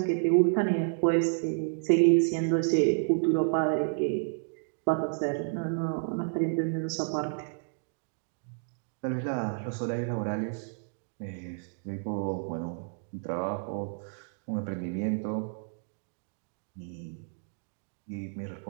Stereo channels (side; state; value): left; silent; digital silence